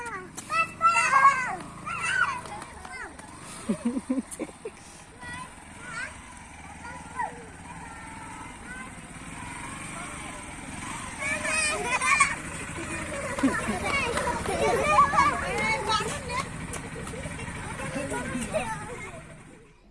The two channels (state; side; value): identical; both; correlation 1.00